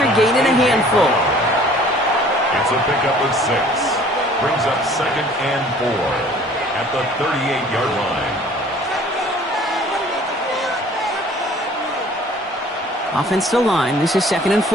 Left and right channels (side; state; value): both; normal; correlation 0.52